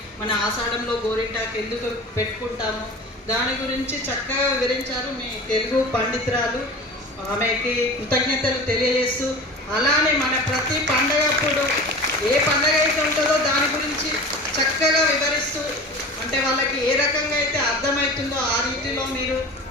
మన ఆషాఢంలో గోరింటాకు ఎందుకు పెట్టుకుంటాము, దాని గురించి చక్కగా వివరించారు మీ తెలుగు పండితురాలు. ఆమెకి కృతజ్ఞతలు తెలియజేస్తూ, అలానే మన ప్రతి పండగప్పుడు ఏ పండగ అయితే ఉంటుందో దాని గురించి చక్కగా వివరిస్తూ, అంటే వాళ్ళకి ఏ రకంగా అయితే అర్థమవుతుందో ఆ రీతిలో మీరు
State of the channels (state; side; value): normal; both; correlation 0.36